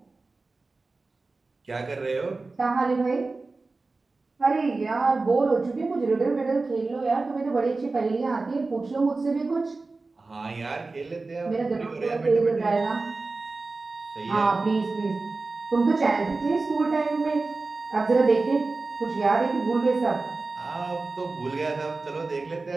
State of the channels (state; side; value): quieter; left; 3.6 dB